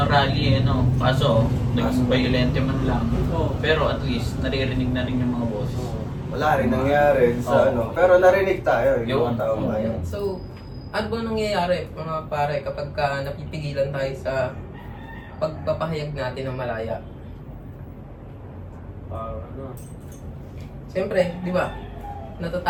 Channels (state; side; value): identical; both; correlation 1.00